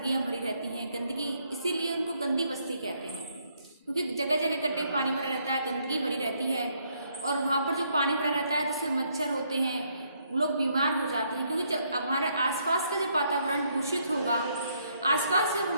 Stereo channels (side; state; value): both; inverted; correlation -0.72